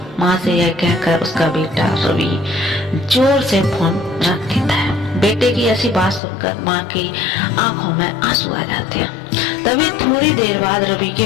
माँ से यह कहकर उसका बेटा रवि जोर से फोन रख देता है। बेटे की ऐसी बात सुनकर माँ की आंखों में आंसू आ जाते हैं। तभी थोड़ी देर बाद रवि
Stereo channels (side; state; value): right; drops out; at 6.2 s